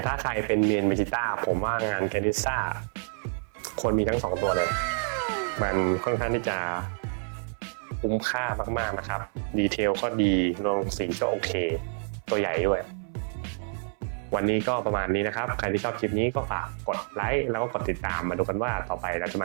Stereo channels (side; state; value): left; silent; 58 dB below the other